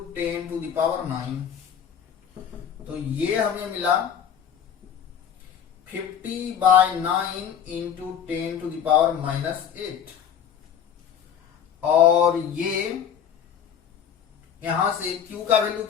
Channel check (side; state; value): right; quieter; 8.4 dB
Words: 10⁹। तो ये हमें मिला 50/9 इंटू 10⁻⁻8, और ये यहां से Q का वैल्यू